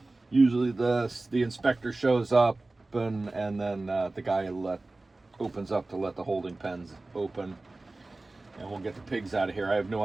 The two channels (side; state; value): left; quieter; 3.1 dB